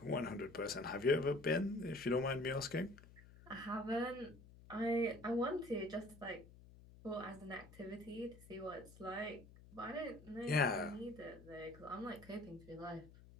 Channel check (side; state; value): left; noise; hum, 20 dB below the sound